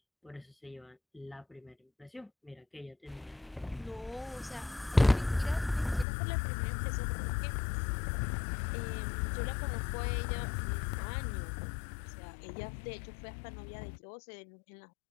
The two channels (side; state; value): right; drops out; at 6.1 s